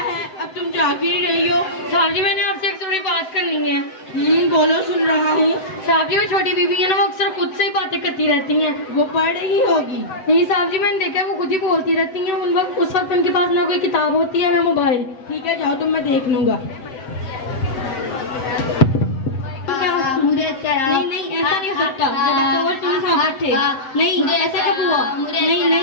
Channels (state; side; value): late; right; 7.9 ms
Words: अब तुम जा क्यों रही हो? साहब जी मैंने आपसे एक थोड़ी बात करनी है। बोलो, सुन रहा हूँ। साहब जी वो छोटी बीबी है ना, वो अक्सर खुद से ही बातें करती रहती हैं। वो पढ़ रही होगी। नहीं साहब जी, मैंने देखा वो खुद ही बोलती रहती हैं। उस वक्त उनके पास ना कोई किताब होती है ना मोबाइल। ठीक है, जाओ, तुम, मैं देख लूंगा। मुझे नहीं नहीं, ऐसा नहीं हो सकता। जब तक तुम साहब थे। नहीं, ऐसा कब हुआ? नहीं